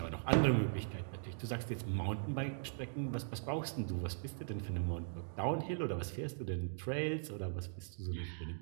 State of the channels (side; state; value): left; silent; digital silence